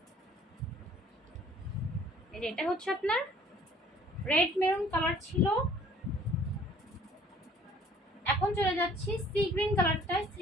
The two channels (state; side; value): normal; both; correlation 0.55